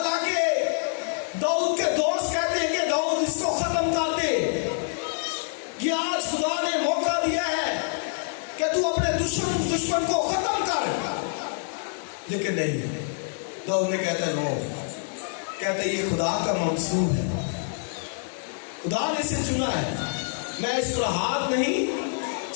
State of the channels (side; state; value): right; silent; digital silence